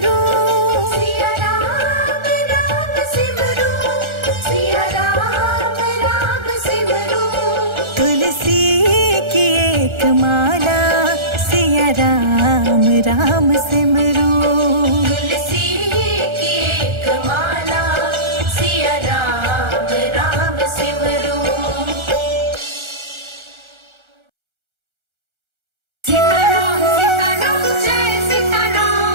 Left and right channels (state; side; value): late; left; 1.4 ms